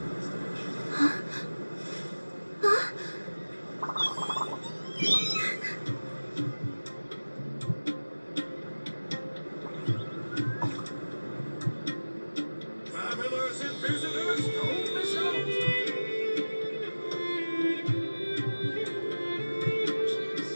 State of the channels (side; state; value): both; inverted; correlation -1.00